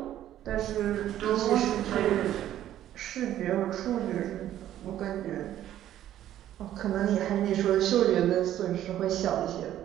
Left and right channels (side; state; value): left; quieter; 12.2 dB